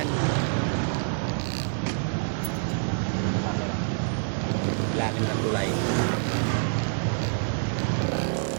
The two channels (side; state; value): left; silent; digital silence